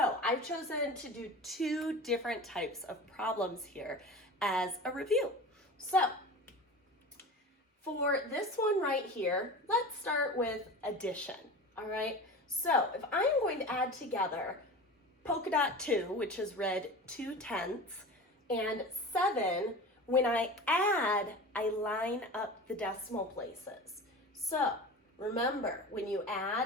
I've chosen to do two different types of problems here as a review. So, for this one right here, let's start with addition, all right? So, if I'm going to add together polka dot 2, which is read 2/10, and 7, when I add, I line up the decimal places. So, remember, when you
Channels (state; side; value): normal; both; correlation 0.33